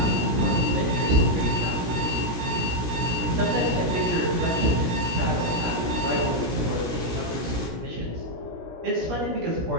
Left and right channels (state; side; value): late; left; 17 ms